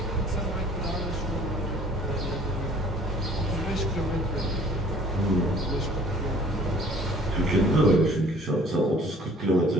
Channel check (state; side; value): normal; both; correlation 0.53